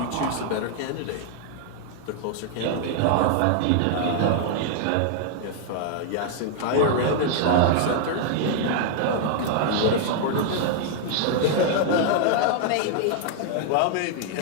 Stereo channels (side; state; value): both; different; correlation -0.01